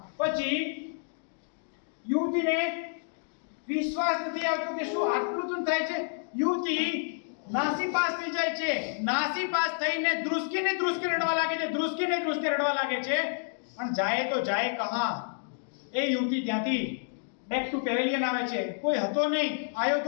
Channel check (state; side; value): silent; right; digital silence